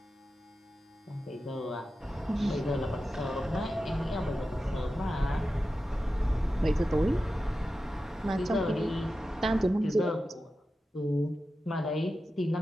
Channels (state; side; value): normal; both; correlation 0.92